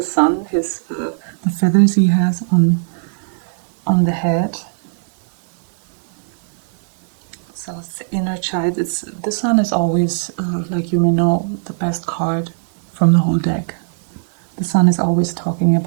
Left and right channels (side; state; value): left; silent; digital silence